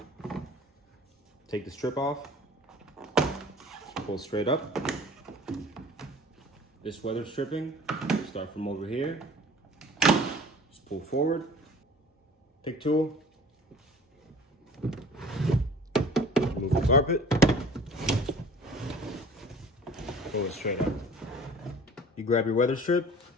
take the strip off, pull straight up. This weather stripping, start from over here, just pull forward, pick tool, move the carpet, pull it straight up. You grab your weather strip,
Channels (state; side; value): normal; both; correlation 0.46